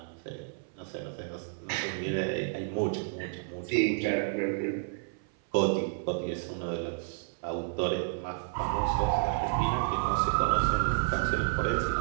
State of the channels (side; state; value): left; silent; 56 dB below the other